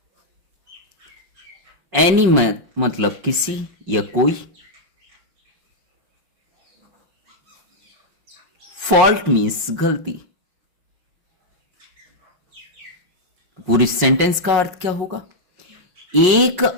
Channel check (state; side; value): late; left; 5.5 ms